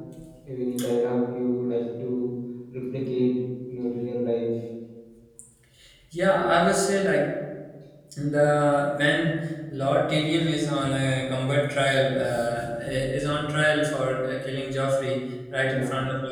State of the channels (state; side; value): identical; both; correlation 1.00